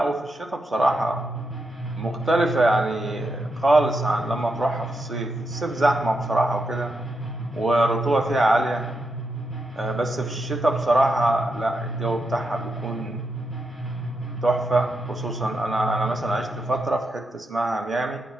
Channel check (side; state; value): both; normal; correlation 0.84